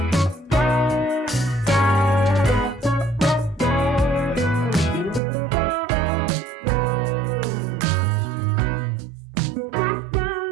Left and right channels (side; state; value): left; drops out; at 5.2 s